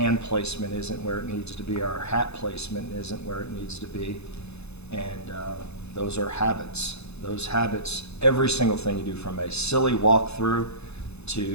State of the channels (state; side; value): late; right; 0.80 ms